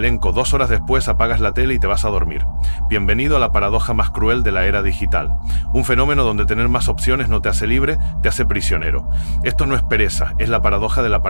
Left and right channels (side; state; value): both; inverted; correlation -1.00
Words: 2 horas después apagas la tele y te vas a dormir. Bienvenido a la paradoja más cruel de la era digital. Un fenómeno donde tener más opciones no te hace libre, te hace prisionero. Esto no es pereza, es la paradoja de la